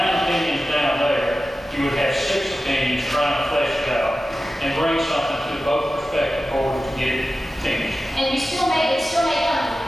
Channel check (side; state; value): both; normal; correlation 0.94